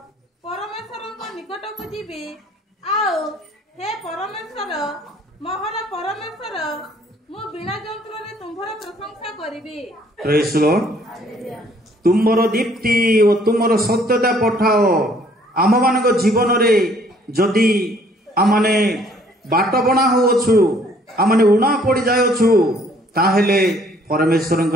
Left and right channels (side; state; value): both; normal; correlation 0.61